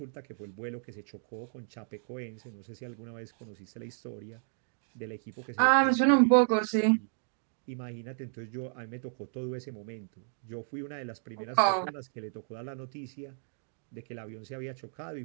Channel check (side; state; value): left; silent; digital silence